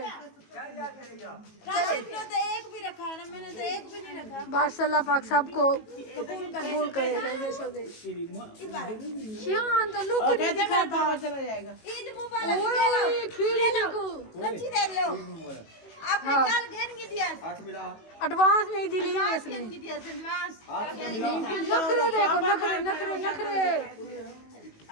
ने तो एक भी रखा है ना, मैंने तो एक भी नहीं रखा। बस अल्लाह पाक सबको कबूल करे। शान तो लुक नहीं दिखाता। ईद मुबारक। ओए खीर देखो सच्ची दे लो। आपने हाँ। कल घेर के दिया। एडवांस में ही दिली है इसने। घेर के दिया एडवांस। नखरे देखो नखरे।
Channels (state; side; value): late; right; 18 ms